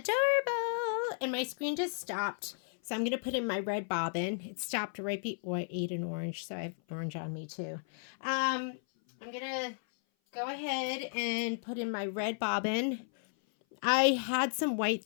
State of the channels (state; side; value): silent; right; 55 dB below the other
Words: And my screen just stopped. So I'm going to put in my red bobbin. It stopped right before I ate an orange. So I have orange on me too. I'm going to go ahead and put in my red bobbin. I had some white